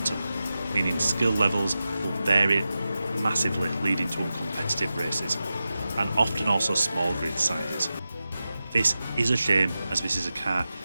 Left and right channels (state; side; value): inverted; both; correlation -0.93